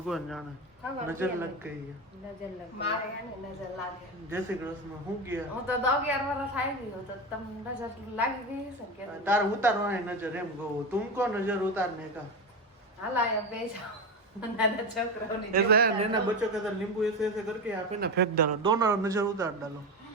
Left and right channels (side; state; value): both; normal; correlation 0.19